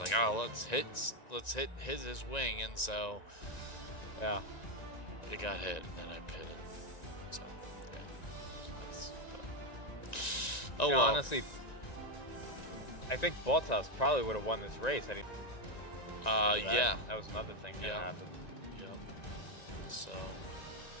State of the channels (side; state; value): right; late; 1.9 ms